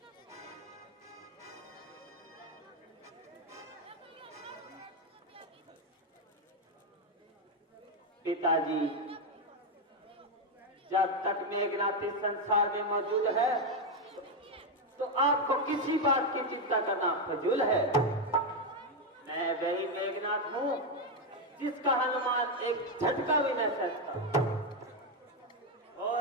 पिताजी, जब तक मेघनाथ इस संसार में मौजूद है तो आपको किसी बात की चिंता करना फजूल है। मैं वही मेघनाथ हूं जिसका हनुमान एक झटका भी न सकता और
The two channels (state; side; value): normal; both; correlation 0.05